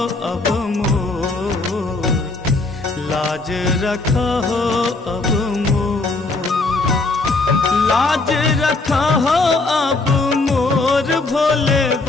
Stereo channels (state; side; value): quieter; right; 3.4 dB